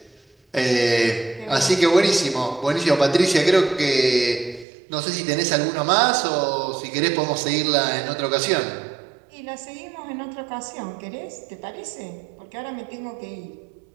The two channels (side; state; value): left; drops out; at 4.7 s